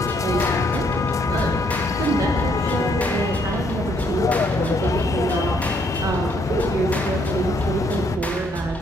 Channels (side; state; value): both; normal; correlation 0.70